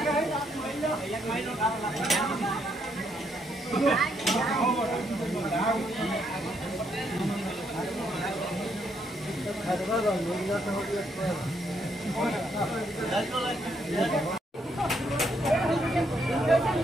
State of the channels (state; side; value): normal; both; correlation 0.74